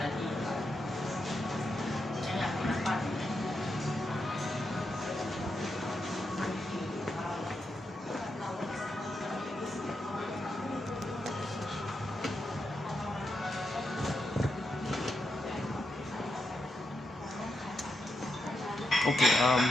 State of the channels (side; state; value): both; normal; correlation 0.85